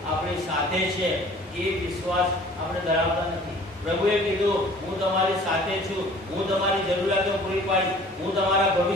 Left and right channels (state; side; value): normal; both; correlation 0.50